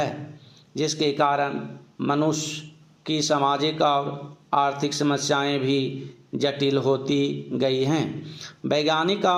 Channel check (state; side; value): identical; both; correlation 1.00